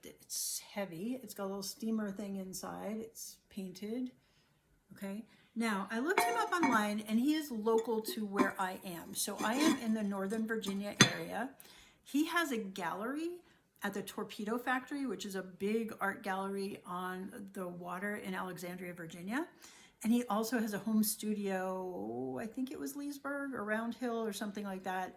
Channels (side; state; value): both; identical; correlation 1.00